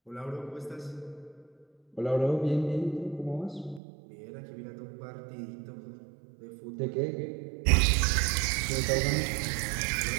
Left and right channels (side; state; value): left; drops out; at 3.8 s